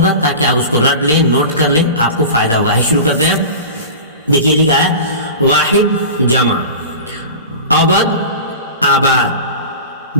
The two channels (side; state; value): both; inverted; correlation -0.32